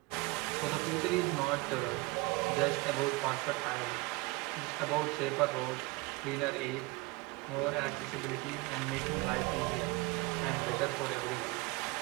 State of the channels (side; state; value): left; quieter; 24.0 dB